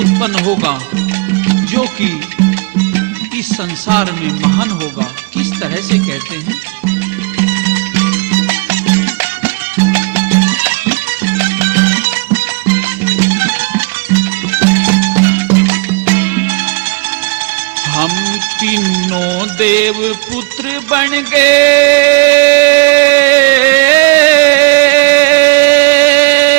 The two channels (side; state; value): left; quieter; 28.1 dB